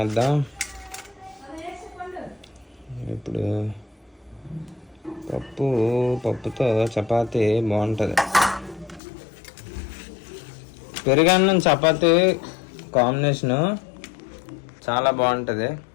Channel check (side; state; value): right; drops out; at 9.0 s